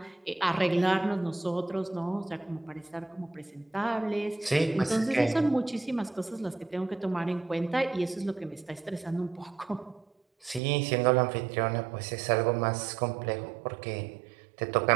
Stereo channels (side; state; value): left; drops out; at 10.6 s